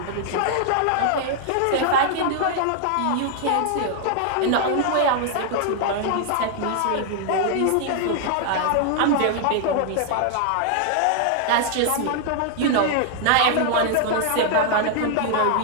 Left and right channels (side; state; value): both; different; correlation 0.00